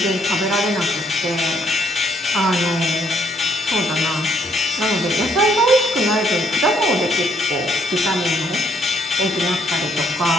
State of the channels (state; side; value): normal; both; correlation 0.70